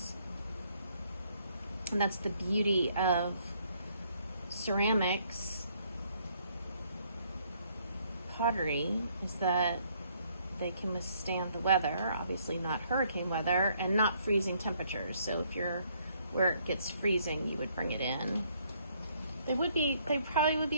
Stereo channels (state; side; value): inverted; both; correlation -0.68